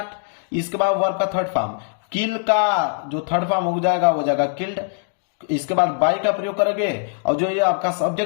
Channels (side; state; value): right; silent; digital silence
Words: इसके बाद वर्ब का थर्ड फॉर्म, किल का जो थर्ड फॉर्म हो जाएगा किल्ड। इसके बाद बाई का प्रयोग करेंगे और जो ये आपका